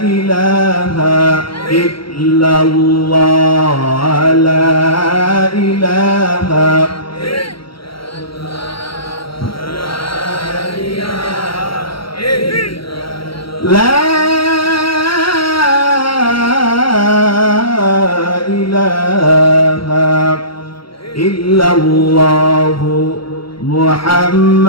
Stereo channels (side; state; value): right; late; 0.74 ms